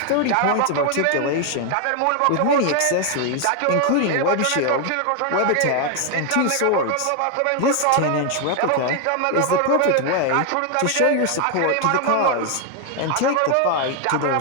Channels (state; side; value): different; both; correlation 0.01